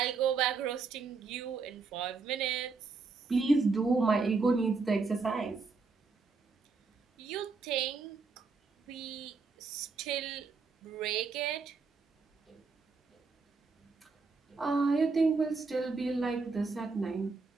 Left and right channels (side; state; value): left; quieter; 4.4 dB